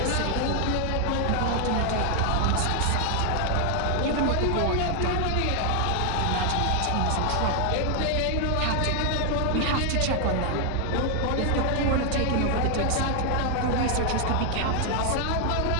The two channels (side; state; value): both; different; correlation 0.00